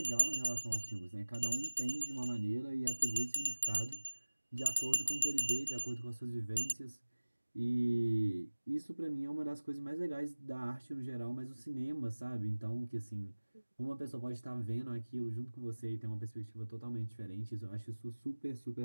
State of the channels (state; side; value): inverted; both; correlation -1.00